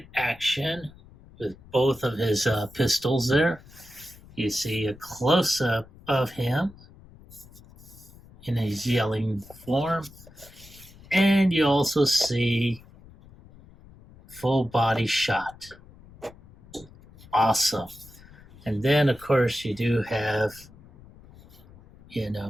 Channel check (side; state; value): left; noise; rumble, 22 dB below the sound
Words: action with both of his pistols there. You see a close-up of him in his yelling form. And you also see full body shot. Awesome. And then, of course, you do have,